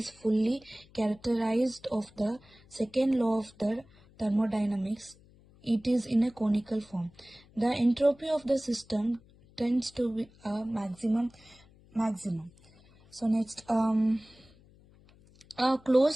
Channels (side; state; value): left; noise; hum, 27 dB below the sound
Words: fully characterized of the second law of the thermodynamics. It is in a conical form. The entropy of the system tends to be a maximum. So next, a closed